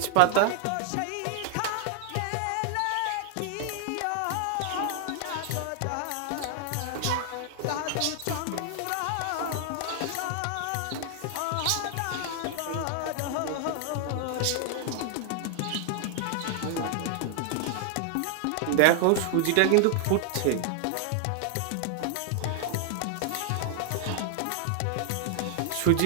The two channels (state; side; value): different; both; correlation 0.00